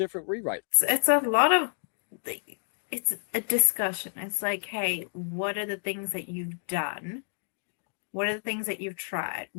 rewrite. It's a lot of, it's a discussion. It's like, hey, what are the things that you've done? What are the things that you've tried?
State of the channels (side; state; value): right; silent; digital silence